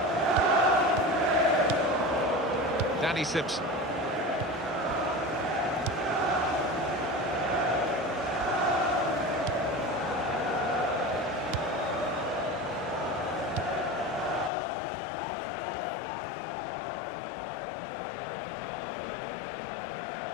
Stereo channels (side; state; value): right; drops out; at 14.5 s